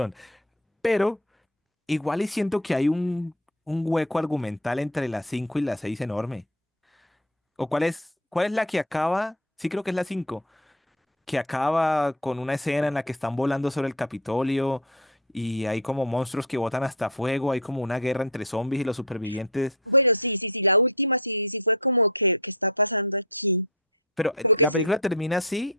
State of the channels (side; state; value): both; normal; correlation 0.21